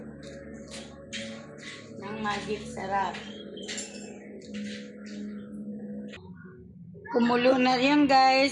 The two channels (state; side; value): identical; both; correlation 1.00